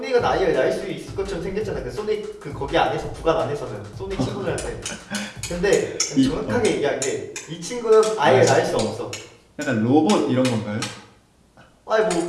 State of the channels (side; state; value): both; identical; correlation 1.00